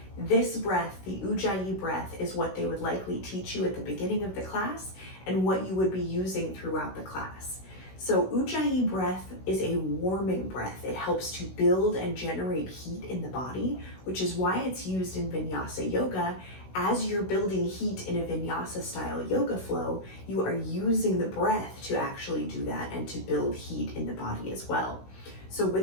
this breath, the Ujjayi breath, is what they would likely teach you at the beginning of the class and what you would be using throughout the class. So Ujjayi breath is a warming breath. It helps to build and generate heat in the body, which is why it's used in Vinyasa yoga. As you're building heat in a Vinyasa style yoga flow, you are using the breath to actually do that and to build heat in the body as well. So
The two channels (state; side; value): late; right; 16 ms